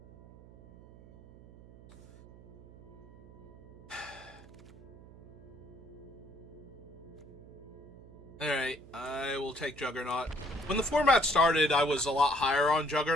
Alright, I will take Juggernaut. When the format started, I was a lot higher on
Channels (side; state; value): right; noise; hum, 20 dB below the sound